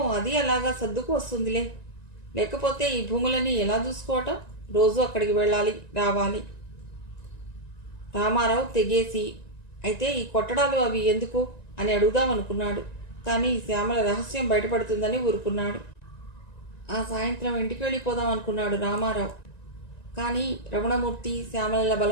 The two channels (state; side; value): late; right; 1.9 ms